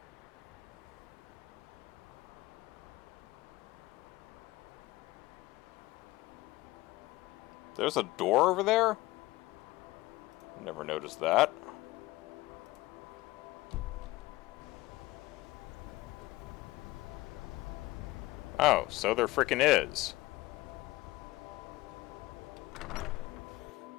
There's a door over there? Never noticed that. Oh, so there frickin' is.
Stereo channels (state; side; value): quieter; right; 19.3 dB